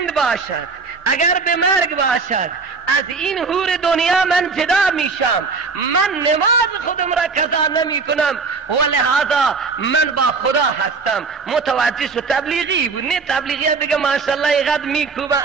باشد، اگر به مرگ باشد، از این حور دنیا من جدا میشم، من نماز خودم را قضا نمی کنم و لحاظا من با خدا هستم. متوجه شو؟ تبلیغی بود، نه تبلیغی دیگه ماشاءالله اینقدر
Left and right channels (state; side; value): quieter; left; 4.7 dB